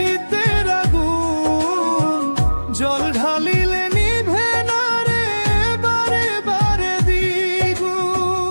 আগুন জল ঢালিলে নিভে না রে বারে বারে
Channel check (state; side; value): inverted; both; correlation -1.00